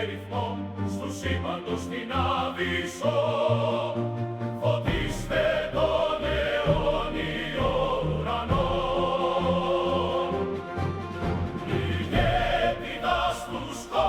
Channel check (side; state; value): both; identical; correlation 1.00